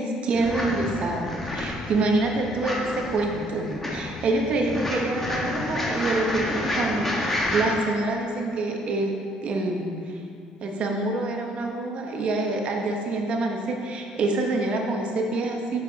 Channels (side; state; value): both; normal; correlation 0.65